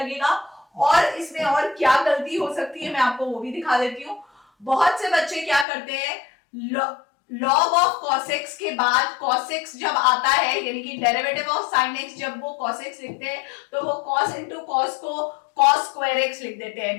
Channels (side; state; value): right; drops out; at 5.7 s